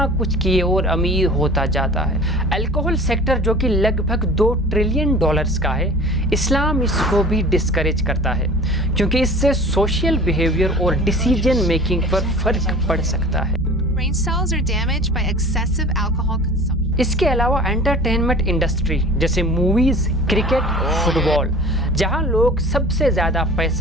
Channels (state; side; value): normal; both; correlation 0.43